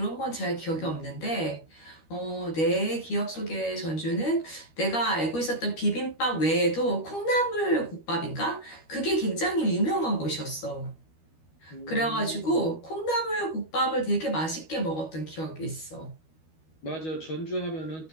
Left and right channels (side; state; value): right; late; 13 ms